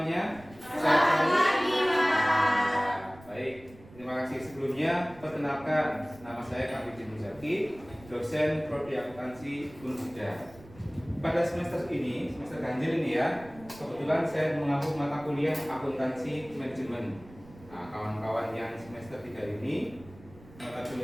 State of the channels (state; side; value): noise; right; rumble, 21 dB below the sound